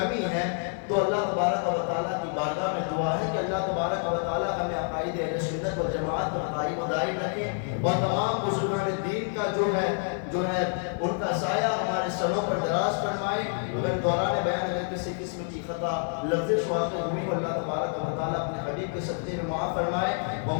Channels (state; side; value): silent; right; 59 dB below the other